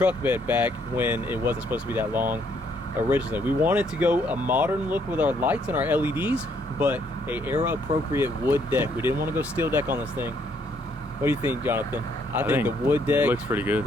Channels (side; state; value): both; normal; correlation 0.69